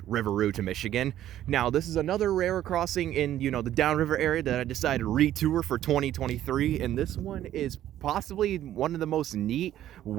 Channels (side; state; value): left; quieter; 12.3 dB